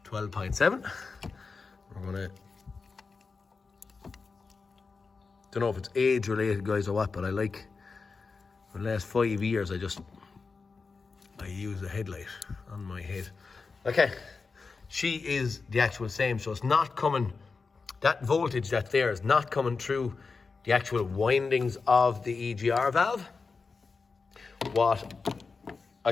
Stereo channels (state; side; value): quieter; right; 4.6 dB